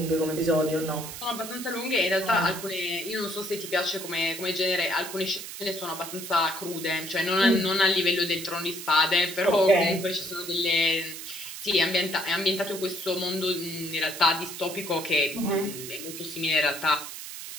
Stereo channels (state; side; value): noise; right; hiss, 10 dB below the sound